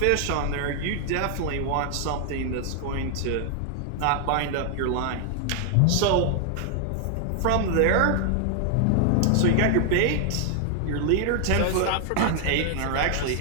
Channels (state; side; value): different; both; correlation 0.00